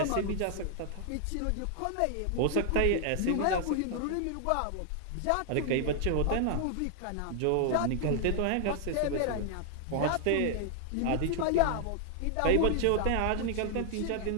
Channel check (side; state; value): both; different; correlation 0.00